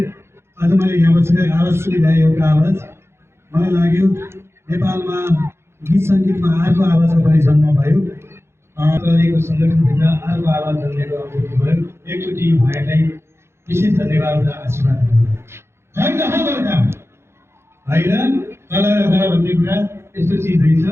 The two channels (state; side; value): late; left; 0.12 ms